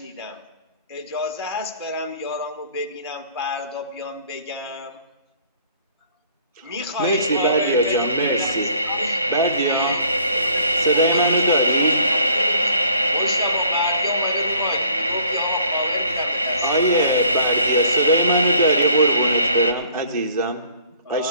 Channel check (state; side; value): inverted; both; correlation -0.58